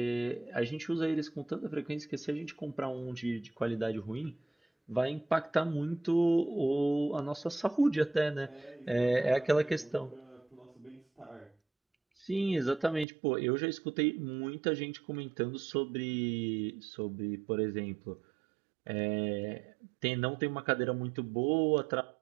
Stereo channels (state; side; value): drops out; left; at 13.1 s